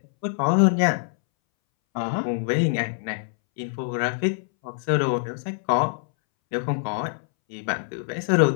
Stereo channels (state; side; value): silent; right; 62 dB below the other